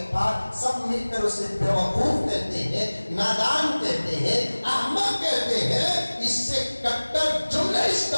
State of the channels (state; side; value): inverted; both; correlation -1.00